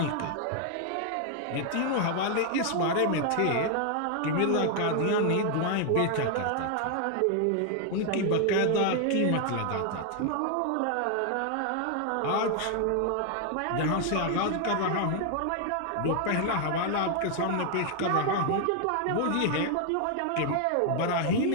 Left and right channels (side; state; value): both; different; correlation 0.00